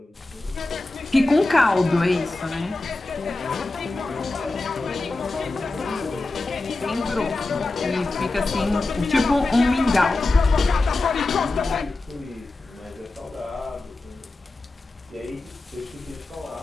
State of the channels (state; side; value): quieter; right; 3.1 dB